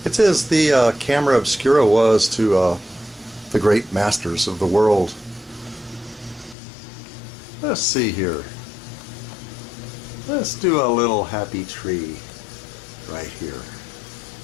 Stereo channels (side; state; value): right; drops out; at 6.6 s